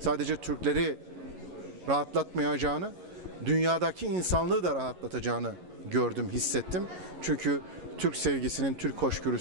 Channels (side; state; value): left; late; 11 ms